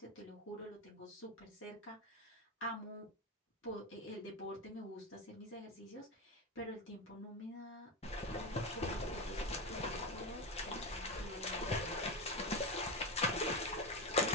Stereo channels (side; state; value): both; normal; correlation 0.15